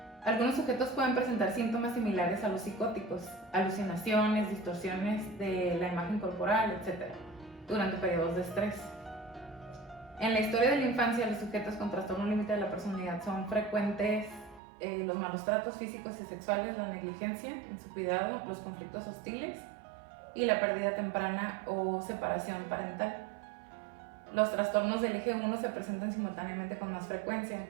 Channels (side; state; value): left; drops out; at 14.6 s